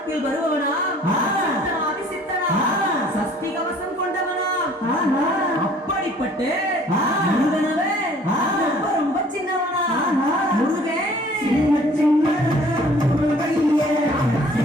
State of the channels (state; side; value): normal; both; correlation 0.54